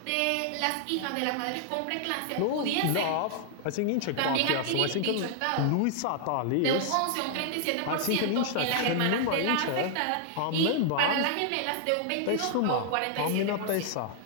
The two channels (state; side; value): different; both; correlation -0.01